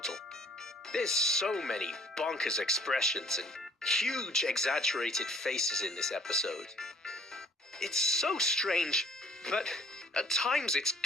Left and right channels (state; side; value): normal; both; correlation 0.56